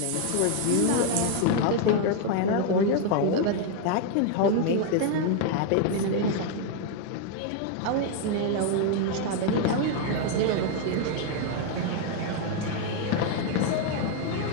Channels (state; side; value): different; both; correlation 0.00